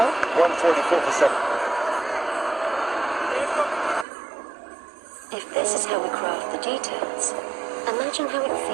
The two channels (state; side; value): drops out; left; at 4.0 s